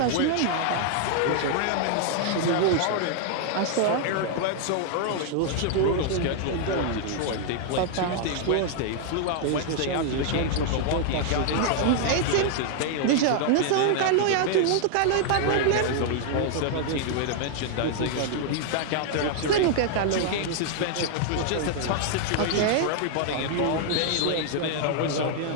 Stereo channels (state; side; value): different; both; correlation 0.00